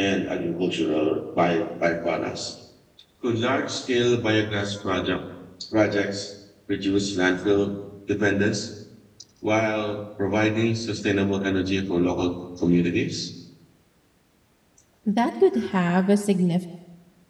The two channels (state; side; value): identical; both; correlation 1.00